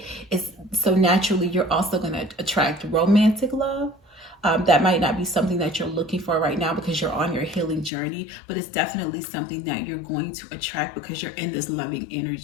is so naturally you're also going to attract romantic love. That might not be something that you're looking for right now because you're on your healing journey, but it's definitely something that you're going to attract because you're in this loving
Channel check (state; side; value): drops out; right; at 7.9 s